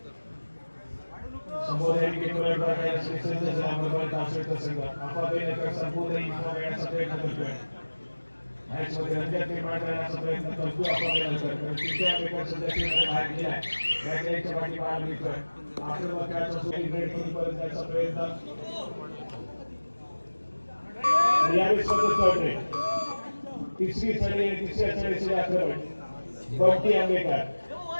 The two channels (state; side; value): inverted; both; correlation -1.00